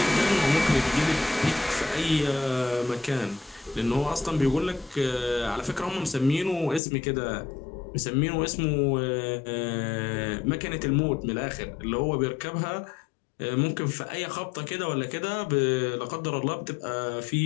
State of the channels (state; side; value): drops out; right; at 6.8 s